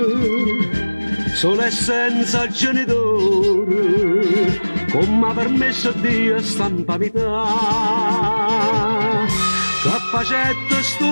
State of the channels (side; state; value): both; inverted; correlation -1.00